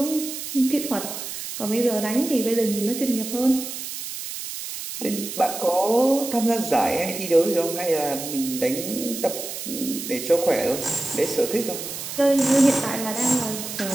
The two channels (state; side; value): noise; right; hiss, 7 dB below the sound